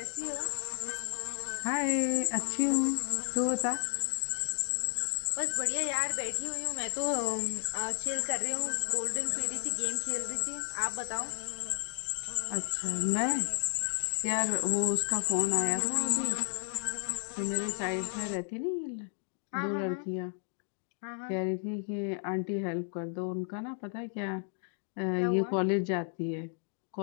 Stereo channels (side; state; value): right; silent; digital silence